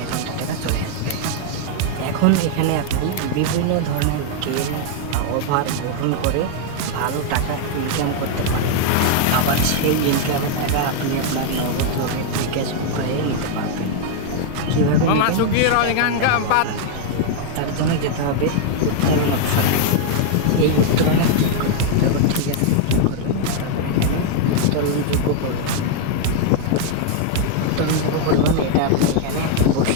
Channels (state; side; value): different; both; correlation 0.00